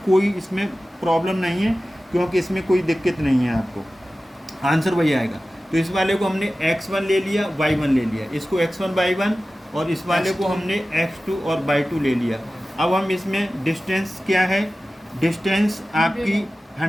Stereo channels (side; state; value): both; normal; correlation 0.95